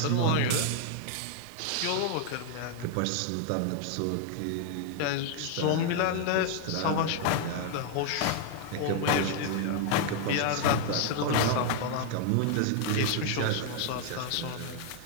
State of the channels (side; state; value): both; different; correlation 0.00